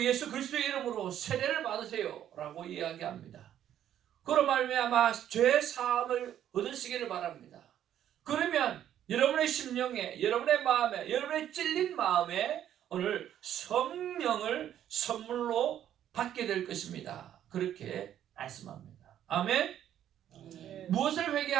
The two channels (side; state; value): left; quieter; 10.8 dB